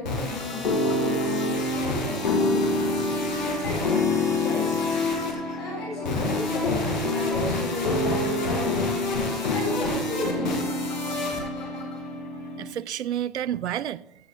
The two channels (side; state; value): both; normal; correlation 0.32